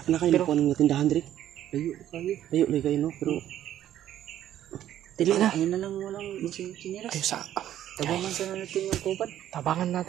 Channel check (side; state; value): left; quieter; 11.7 dB